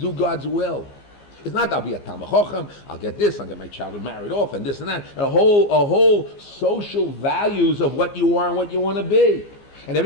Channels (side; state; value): right; late; 15 ms